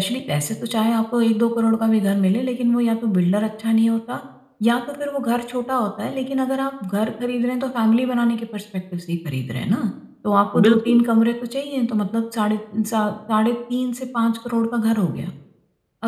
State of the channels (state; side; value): identical; both; correlation 1.00